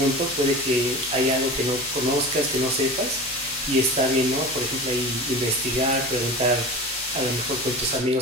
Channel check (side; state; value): both; normal; correlation 0.32